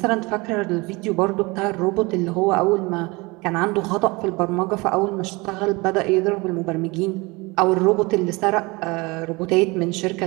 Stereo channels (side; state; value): left; quieter; 24.9 dB